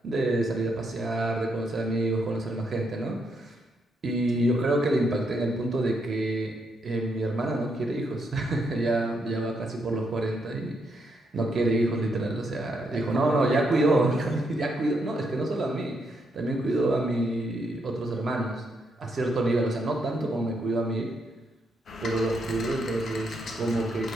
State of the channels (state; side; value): normal; both; correlation 0.78